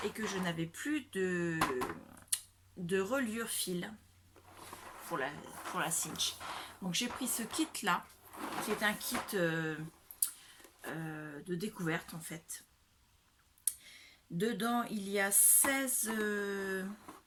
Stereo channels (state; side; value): identical; both; correlation 1.00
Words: et que je n'avais plus de reliure fil pour la cinch. Donc j'ai pris ce kit là, qui est un kit de découverte en fait. Dedans il y a 16